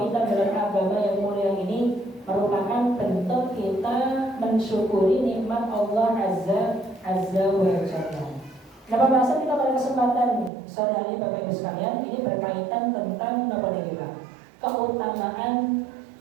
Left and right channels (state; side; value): drops out; left; at 10.5 s